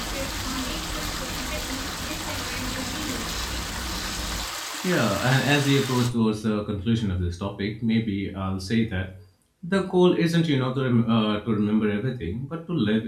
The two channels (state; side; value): identical; both; correlation 1.00